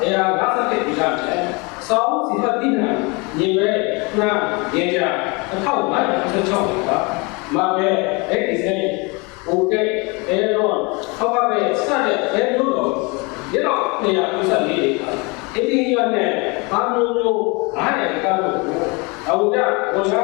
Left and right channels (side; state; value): right; quieter; 28.7 dB